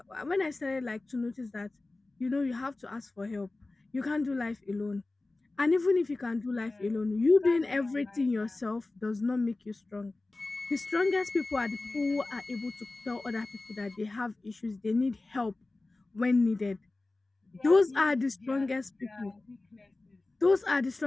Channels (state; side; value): quieter; right; 3.1 dB